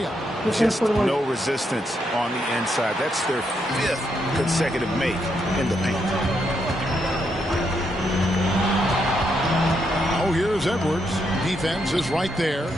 Just no resistance on the inside. That's their 5th consecutive make in the paint. Oh, here's Edwards. Defense is right there.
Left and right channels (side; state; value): both; normal; correlation 0.79